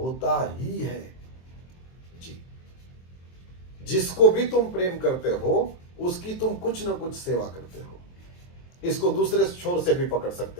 ही है जी। जिसको भी तुम प्रेम करते हो उसकी तुम कुछ ना कुछ सेवा करते हो। इसको दूसरे छोर से भी पकड़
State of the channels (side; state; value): right; late; 23 ms